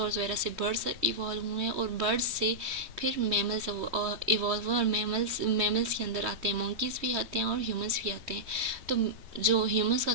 वगैरह से बर्ड्स इवॉल्व हुए हैं, और बर्ड्स से फिर मैमल्स इवॉल्व हुए, और मैमल्स के अंदर आते हैं मंकीज़ भी आते हैं और ह्यूमंस भी आते हैं। तो जो ह्यूमंस का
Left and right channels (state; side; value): late; left; 3.2 ms